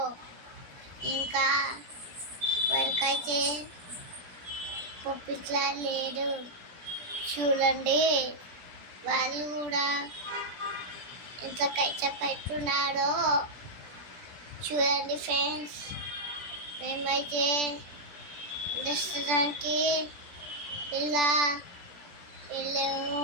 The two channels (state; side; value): late; left; 17 ms